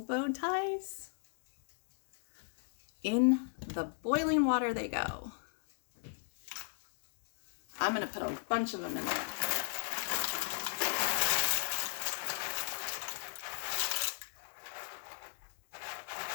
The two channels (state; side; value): silent; right; digital silence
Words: bow ties? In the boiling water they go. I'm going to put a bunch of them in there.